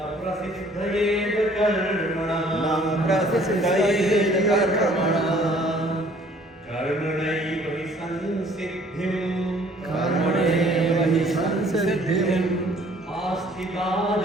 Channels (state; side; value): normal; both; correlation 0.57